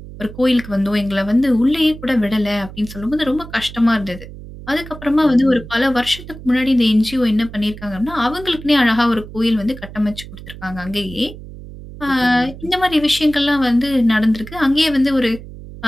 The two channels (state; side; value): noise; right; hum, 14 dB below the sound